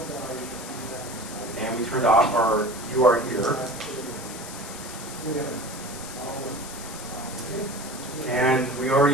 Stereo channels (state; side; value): noise; left; hiss, 12 dB below the sound